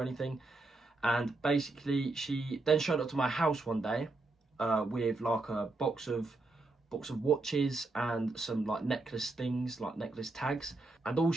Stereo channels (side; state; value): left; quieter; 3.1 dB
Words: anything. And basically, she then showed up to my house one day with like a box of watches and some like necklace things, like necklace tags. And all